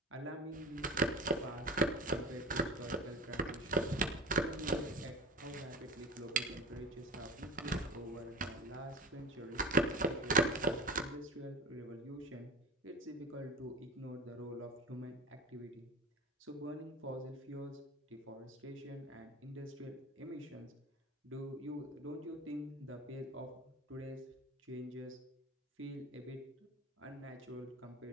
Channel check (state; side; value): normal; both; correlation 0.34